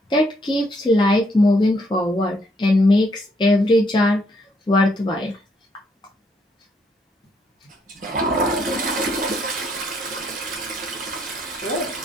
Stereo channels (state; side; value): normal; both; correlation 0.71